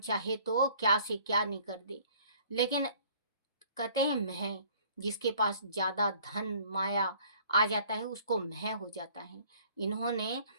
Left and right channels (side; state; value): both; inverted; correlation -0.55